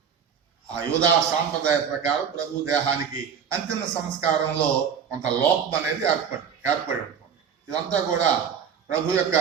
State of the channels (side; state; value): left; quieter; 7.5 dB